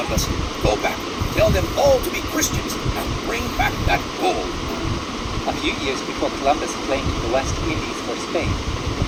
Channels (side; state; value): both; identical; correlation 1.00